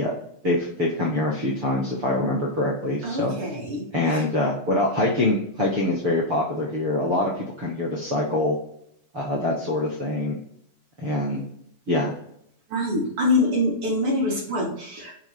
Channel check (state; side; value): late; left; 6.9 ms